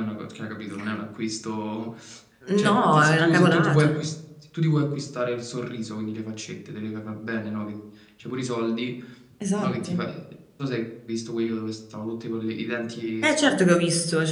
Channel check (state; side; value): identical; both; correlation 1.00